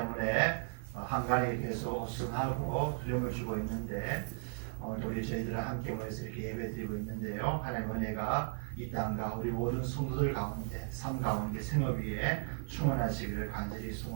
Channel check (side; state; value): left; silent; digital silence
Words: 한간이 계속 우승하고 두려움을 주고 있는데 오늘도 우리 저희들은 함께 모여서 이렇게 예배드리고 있는데요. 하나님의 은혜가 이 땅과 우리 모든 성도들 가운데 삶 가운데 생업 위에 충만하시기를 간절히